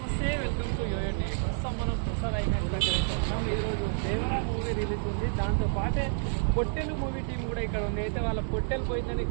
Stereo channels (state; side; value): silent; left; digital silence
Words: నమస్తే, welcome to యోయోటి. ప్రస్తుతం మనం ప్రసాద్ ఐమాక్స్ దగ్గర అయితే ఉన్నాం. ఈరోజు దేవరా మూవీ రిలీజ్ ఉంది. దాంతో పాటే పొట్టెలు మూవీ టీం కూడా ఇక్కడ ఉంది. అయితే వాళ్ళ పొట్టెలు